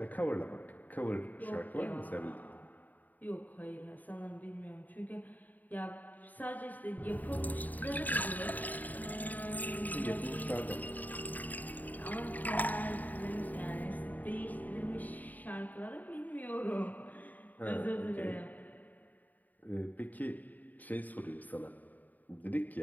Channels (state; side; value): late; right; 0.082 ms